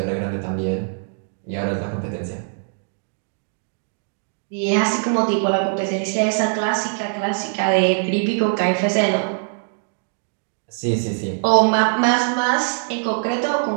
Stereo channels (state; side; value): silent; left; 62 dB below the other